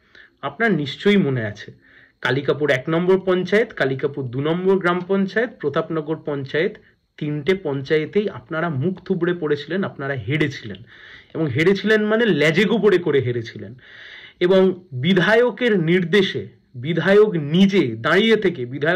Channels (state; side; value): identical; both; correlation 1.00